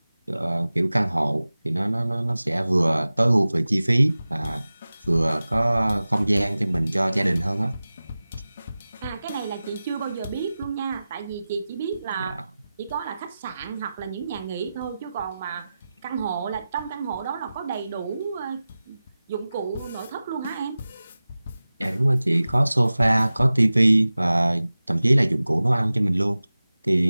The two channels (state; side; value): inverted; both; correlation -0.96